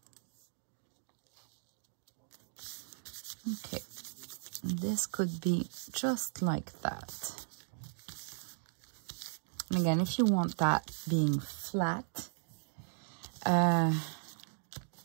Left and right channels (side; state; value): left; silent; digital silence